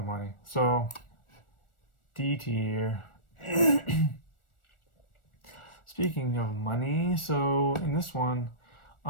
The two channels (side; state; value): right; late; 1.4 ms